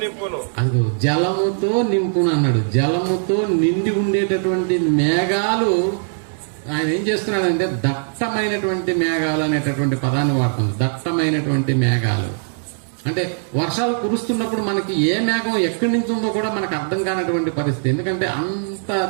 నింపును. అదిగో జలముతో నింపును అన్నాడు. జలముతో నిండి ఉండేటటువంటి మేఘాలు ఆయన ఏం చేస్తున్నాడంటే దట్టమైనటువంటి మేఘాలు అనేటటువంటి పదాన్ని వాడుతుంది. దట్టమైనటువంటి మేఘాలు అంటే వర్షాలు కురుస్తున్నప్పుడు మనకి ఏ మేఘం ఎక్కడి నుంచి ఉందో కూడా మనకు అర్థం కానటువంటి పరిస్థితి. ఎందుకంటే అంత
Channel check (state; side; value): silent; left; 66 dB below the other